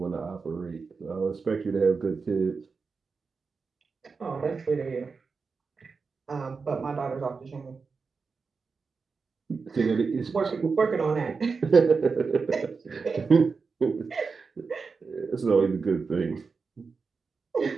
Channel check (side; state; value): left; quieter; 4.9 dB